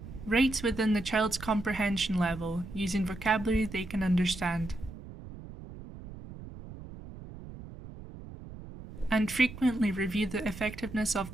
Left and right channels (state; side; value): noise; right; rumble, 14 dB below the sound